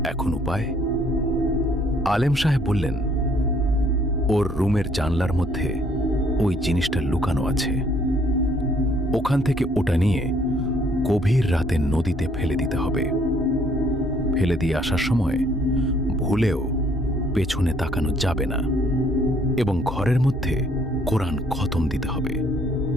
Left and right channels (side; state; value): both; normal; correlation 0.64